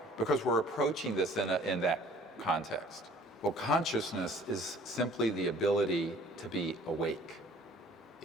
because we're approaching this in that context. Well, consciousness is simply the ability to be awake.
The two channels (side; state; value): both; normal; correlation 0.53